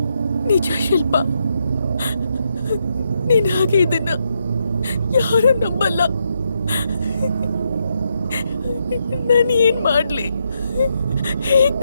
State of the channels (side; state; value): both; inverted; correlation -0.80